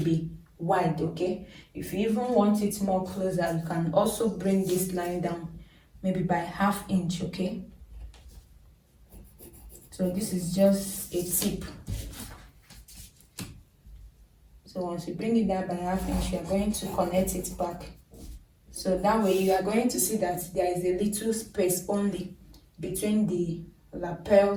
wide, okay? If you even want it more closer, you can also bring this line down maybe by 1/2 inch, okay? So this is just a tip. So once you bring it down by 1/2 inch, you are going to connect it back. So that way you are going to see that there is a little space only between the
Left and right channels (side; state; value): both; identical; correlation 1.00